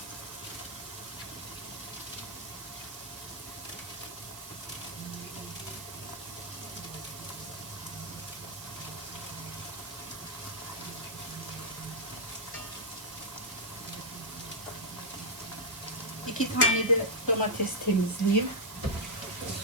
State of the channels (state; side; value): noise; right; hiss, 12 dB below the sound